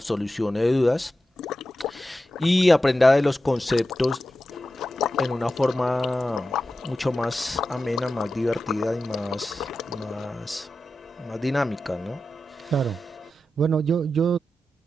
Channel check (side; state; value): both; normal; correlation 0.91